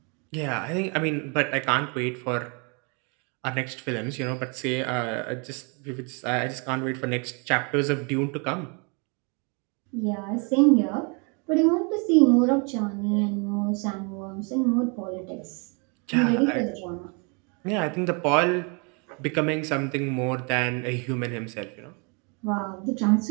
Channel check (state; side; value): quieter; left; 33.8 dB